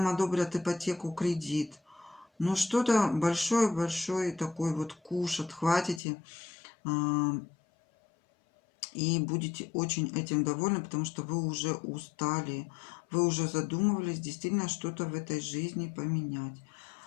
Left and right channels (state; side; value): drops out; right; at 6.0 s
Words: одобрят ипотеку, кредит. Ну, что-то большой-большой такой вот куш отхватите и будете очень этим довольны, потому что вы уже устали, вы уже задумывались действительно что-то в этой жизни поменять.